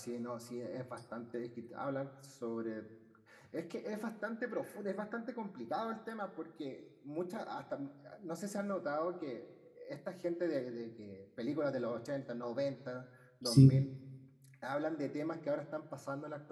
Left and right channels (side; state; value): both; identical; correlation 1.00